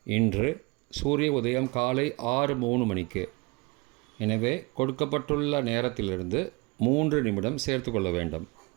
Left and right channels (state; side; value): quieter; left; 26.9 dB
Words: இன்று சூரிய உதயம் காலை 6:03. எனவே கொடுக்கப்பட்டுள்ள நேரத்திலிருந்து 3 நிமிடம் சேர்த்து கொள்ள வேண்டும்.